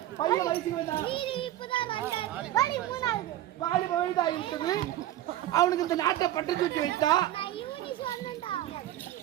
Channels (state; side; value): quieter; left; 13.6 dB